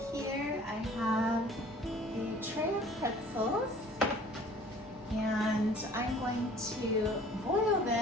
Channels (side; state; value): both; normal; correlation 0.51